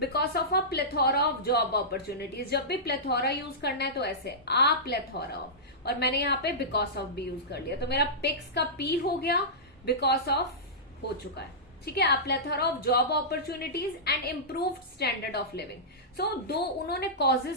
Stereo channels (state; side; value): normal; both; correlation -0.16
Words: of a plethora of job opportunities. जब भी प्लेथोरा यूज करना है तो ऐसे आ प्लेथोरा ऑफ, और मैंने यहाँ पे बिकॉज ऑफ भी यूज कर लिया, तो मेरा पिक्स का पी हो गया, बिकॉज ऑफ हो चुका है, ठीक है. A plethora of job opportunities and improved standard of living. So दो उन्होंने